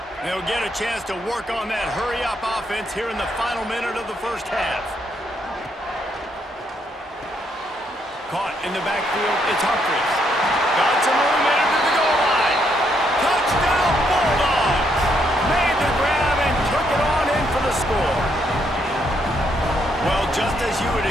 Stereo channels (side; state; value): both; normal; correlation 0.74